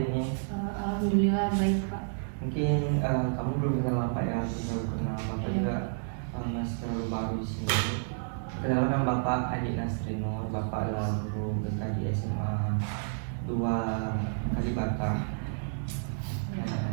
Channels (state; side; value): silent; left; digital silence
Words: ini? Alhamdulillah baik Pak. Mungkin kamu belum kenal Bapak ya, aku baru kenal Bapak juga masih terlalu baru di sini. Perkenalkan Bapak Adi Nasrinur, Bapak adalah guru BK di SMA 2 Kalibata.